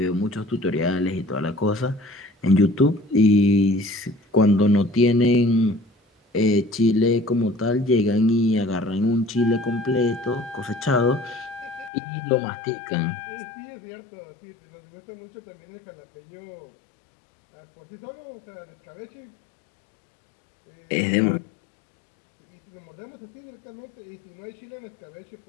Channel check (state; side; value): drops out; right; at 11.9 s